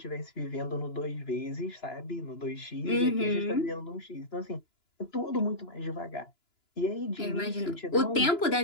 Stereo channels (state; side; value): late; right; 2.9 ms